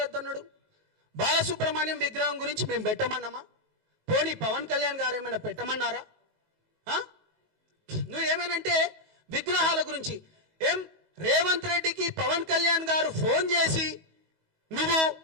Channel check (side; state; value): left; late; 19 ms